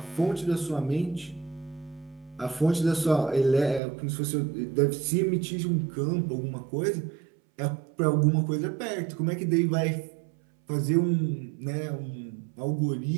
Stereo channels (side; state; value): left; drops out; at 3.8 s